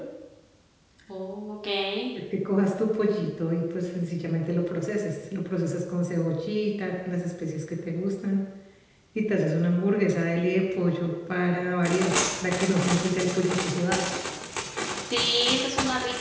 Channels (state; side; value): identical; both; correlation 1.00